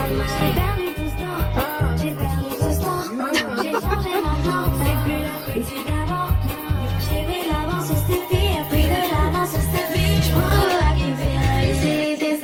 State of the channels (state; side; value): identical; both; correlation 1.00